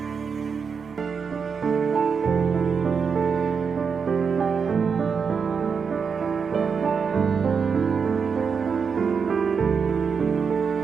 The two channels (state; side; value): quieter; left; 6.0 dB